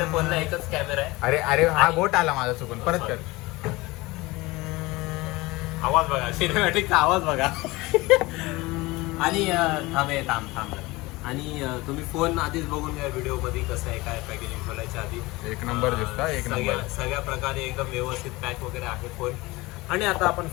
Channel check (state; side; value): quieter; right; 21.6 dB